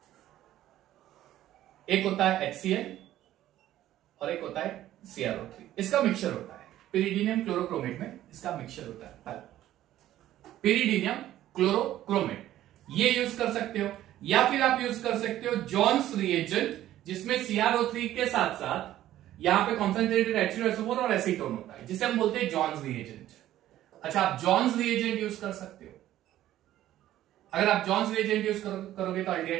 एक होता है HCl और एक होता है CrO3, इसका मिक्सचर होता है। पिरिडीनियम क्लोरोक्रोमेट में इसका मिक्सचर होता है। पहला पिरिडीनियम क्लोरोक्रोमेट, ये यूज कर सकते हो, या फिर आप यूज कर सकते हो जॉन्स रिएजेंट, जिसमें CrO3 के साथ साथ यहां पे कॉन्सेंट्रेटेड H2SO4 और एसीटोन होता है, जिसे हम बोलते हैं जॉन्स रिएजेंट। अच्छा, आप जॉन्स रिएजेंट यूज कर सकते हो, अगर आप जॉन्स रिएजेंट यूज करोगे तो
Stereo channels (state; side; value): quieter; left; 13.3 dB